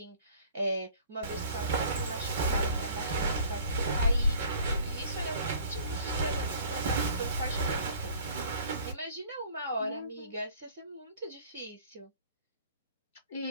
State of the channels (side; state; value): both; inverted; correlation -0.52